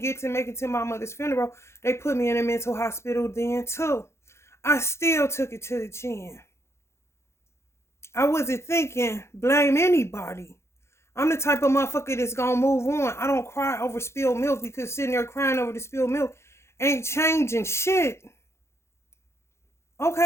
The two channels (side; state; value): right; late; 0.13 ms